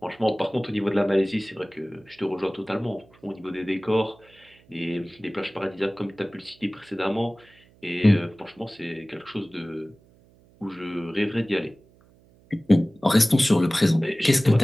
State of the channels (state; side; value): noise; right; hum, 29 dB below the sound